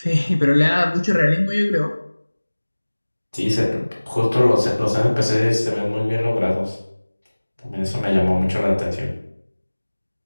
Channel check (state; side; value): inverted; both; correlation -1.00